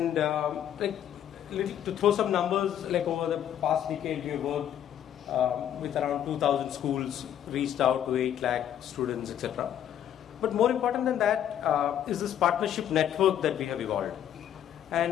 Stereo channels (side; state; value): right; quieter; 10.3 dB